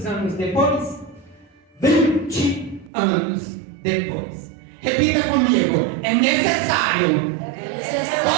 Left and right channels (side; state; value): left; drops out; at 2.9 s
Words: anos depois? 20 anos depois. Repita comigo. É necessário